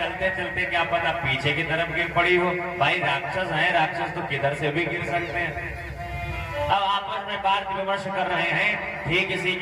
चलते क्या पता पीछे की तरफ गिर पड़ी हो। भाई राक्षस है, राक्षस तो किधर से भी गिर सकते हैं। अब आपस में बात विमर्श कर रहे हैं। ठीक इसी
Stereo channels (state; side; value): identical; both; correlation 1.00